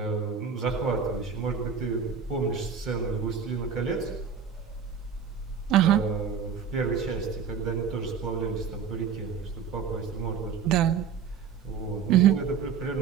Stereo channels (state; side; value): quieter; left; 6.8 dB